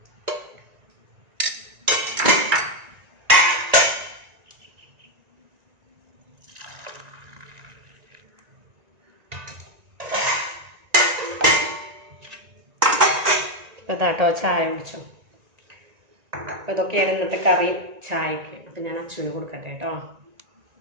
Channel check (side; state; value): left; late; 1.9 ms